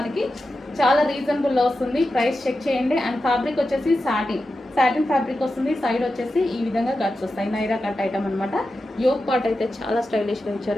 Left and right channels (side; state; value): both; normal; correlation 0.91